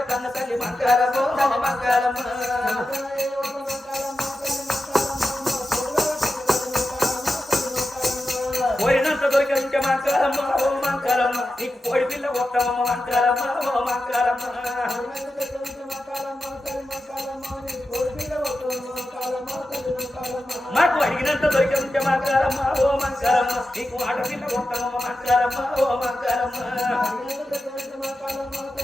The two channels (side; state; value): both; normal; correlation 0.91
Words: కన్న తల్లి మంకారమ్మ మంకారమ్మ పోయినంత దొరికింటే మంకారమ్మ ఓ మంకారమ్మ నీకు కోడి పిల్ల కొత్తమ్మ మంకారమ్మ ఓ మంకారమ్మ మాకు అడిగినంత దొరికింటే మంకారమ్మ ఓ మంకారమ్మ నీకు ఆడపిల్ల కొత్తమ్మ మంకారమ్మ ఓ మంకారమ్మ